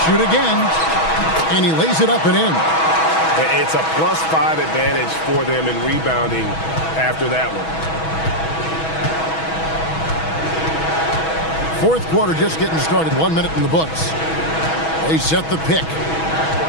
shoot again. And he lays it up and in. It's a +5 advantage for them in rebounding after that one. Fourth quarter just getting started. 1 minute in the books. They set the pick.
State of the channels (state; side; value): late; right; 6.2 ms